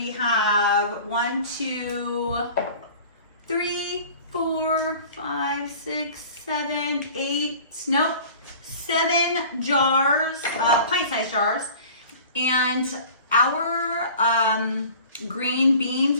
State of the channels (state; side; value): inverted; both; correlation -0.44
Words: have 7 jars, pint-sized jars. And our green